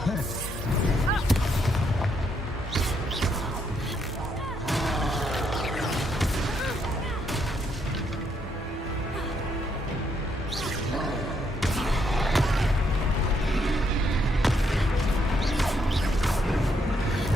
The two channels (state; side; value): normal; both; correlation 0.75